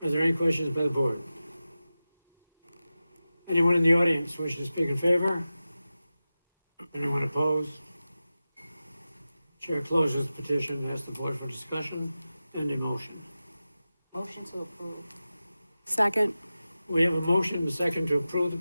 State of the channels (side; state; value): both; inverted; correlation -0.94